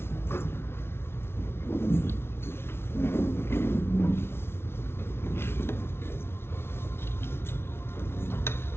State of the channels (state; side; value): late; right; 0.12 ms